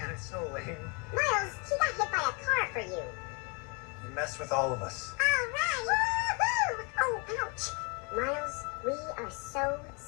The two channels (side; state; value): right; quieter; 31.1 dB